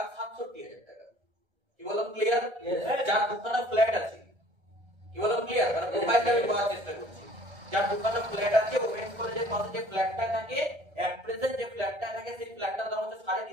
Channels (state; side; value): late; left; 1.3 ms